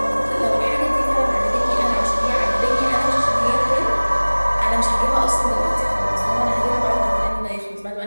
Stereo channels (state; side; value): inverted; both; correlation -1.00